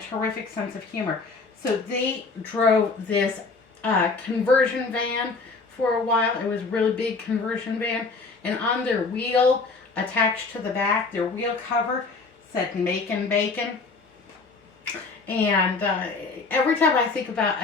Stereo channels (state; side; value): quieter; right; 4.1 dB